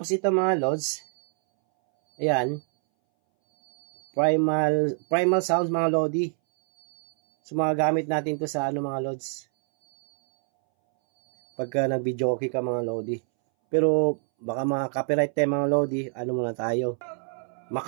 ito mga lods, ayan, primal sounds mga lodi. So, mga gamit natin to sa mga lods. Pagka nag-video okay ka mga lodi. Pero, baka mga copyright tayo mga lodi. Muna tayo.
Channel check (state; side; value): silent; left; 61 dB below the other